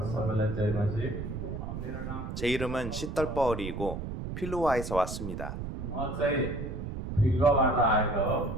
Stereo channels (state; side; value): noise; right; rumble, 6 dB below the sound